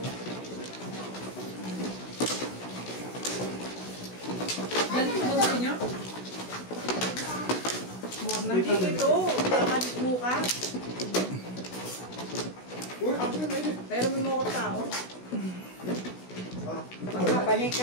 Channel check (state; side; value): late; right; 16 ms